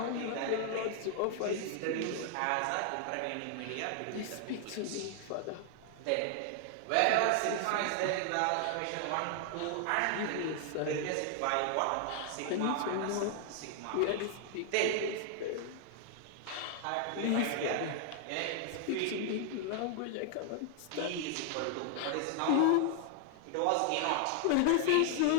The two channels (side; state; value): both; different; correlation 0.00